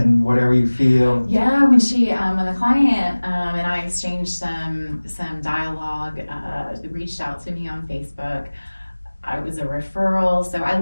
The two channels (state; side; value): inverted; both; correlation -1.00